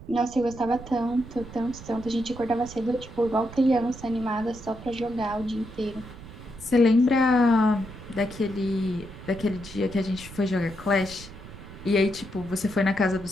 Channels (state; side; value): noise; right; rumble, 15 dB below the sound